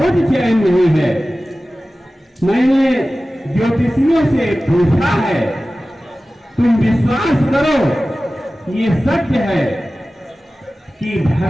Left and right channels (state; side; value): normal; both; correlation 0.96